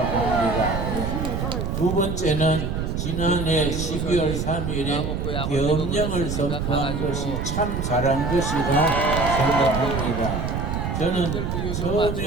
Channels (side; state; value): right; noise; rumble, 2 dB below the sound